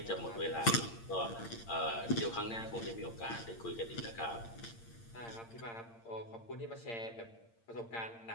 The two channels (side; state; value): right; late; 8.7 ms